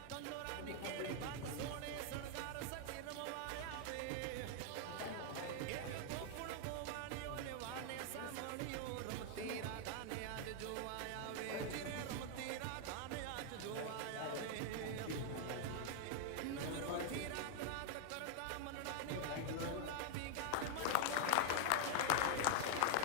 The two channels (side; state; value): both; different; correlation 0.00